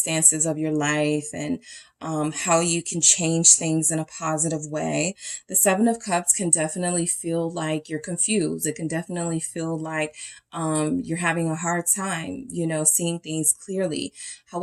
of your life and how you can change things in a positive way. The 7 of Cups can definitely feel like you're confused. It can definitely feel like you're having a hard time, seeing things clearly.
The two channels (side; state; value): both; identical; correlation 1.00